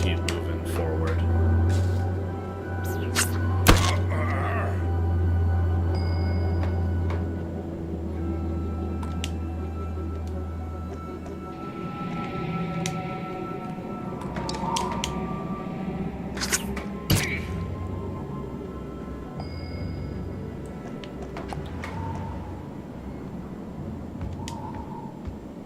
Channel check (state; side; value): identical; both; correlation 1.00